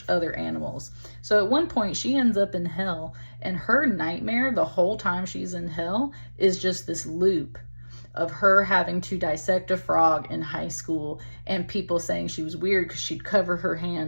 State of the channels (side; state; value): both; inverted; correlation -1.00